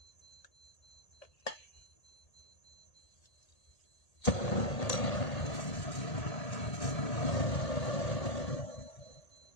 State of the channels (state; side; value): late; right; 1.8 ms